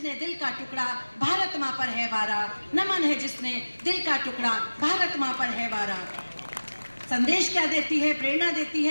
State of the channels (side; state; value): both; inverted; correlation -1.00